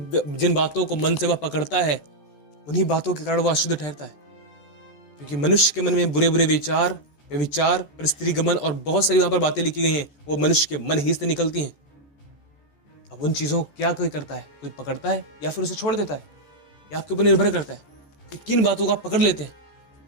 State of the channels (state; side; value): late; right; 14 ms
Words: बातों को मन से वह पकड़ता है, उन्हीं बातों के कारण वह अशुद्ध ठहरता है। क्योंकि मनुष्य के मन में बुरे बुरे विचार, परिस्त्री गमन और बहुत सारी वहां पर बातें लिखी गई हैं, वो मनुष्य के मन ही से निकलती हैं। अब उन चीजों को क्या कोई करता है? कोई पकड़ता है या फिर उसे छोड़ देता है? या आपके ऊपर निर्भर करता है कि किन बातों को आप पकड़ लेते हैं।